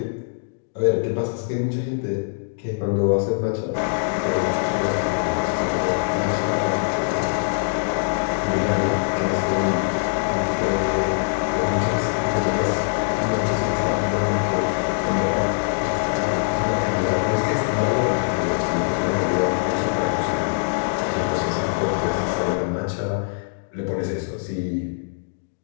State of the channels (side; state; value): right; silent; digital silence